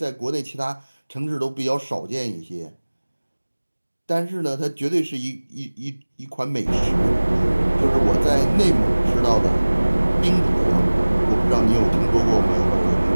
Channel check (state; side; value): inverted; both; correlation -1.00